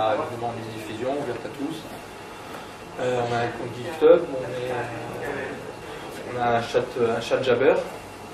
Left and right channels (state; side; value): identical; both; correlation 1.00